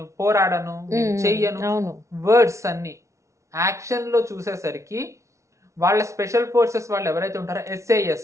పోరాడను, నేను చెయ్యను, వర్డ్స్ అన్ని. యాక్షన్ లో చూసేసరికి వాళ్ళ స్పెషల్ ఫోర్సెస్ వాళ్ళు ఎవరైతే ఉంటారో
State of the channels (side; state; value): left; late; 0.14 ms